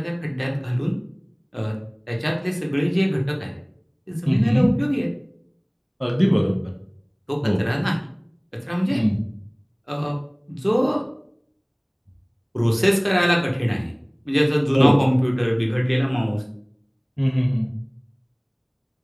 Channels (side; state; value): both; identical; correlation 1.00